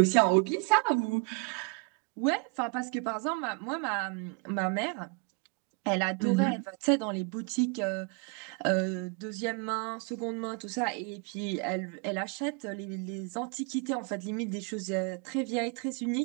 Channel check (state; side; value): quieter; left; 32.0 dB